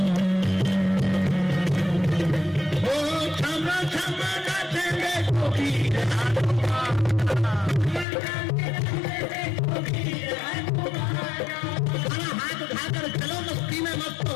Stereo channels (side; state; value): right; drops out; at 8.1 s